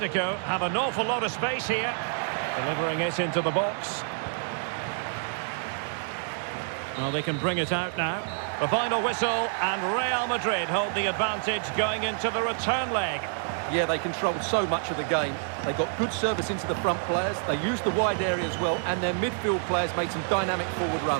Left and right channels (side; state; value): left; silent; 59 dB below the other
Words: have an awful lot of space here. Delivering it into the box. Well, they can bring it out now. The final whistle, and Real Madrid hold the advantage going into the return leg. Yeah, they controlled so much of the game. They got good service into the front players, they used the wide area as well, and their midfield players made some dynamic forward